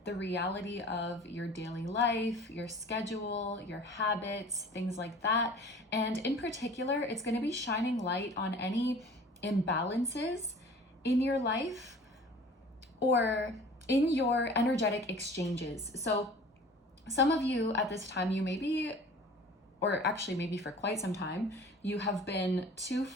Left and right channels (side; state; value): both; normal; correlation 0.45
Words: the reality of your daily life, your schedule, your habits, things like that. And in particular, it's going to be shining light on any imbalances in your life or in your energetic exchanges. So some of you at this time, you may be, or actually maybe for quite some time, you have been too